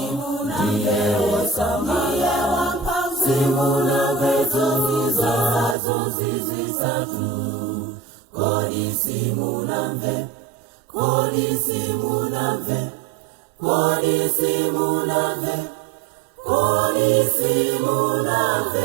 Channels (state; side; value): drops out; left; at 5.8 s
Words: ndiye osamaye wamphamvu, simuna vezo zizisatu. Kodi simunamve, kodi simunamve, kodi simunamve, kodi